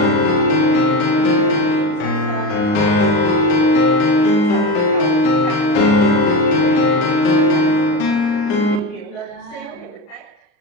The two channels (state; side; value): late; right; 39 ms